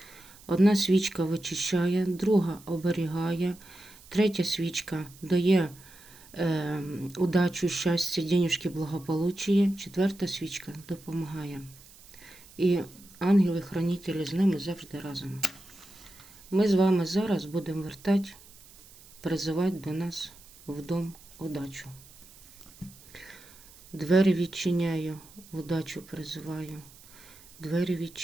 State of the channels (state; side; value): noise; right; hiss, 23 dB below the sound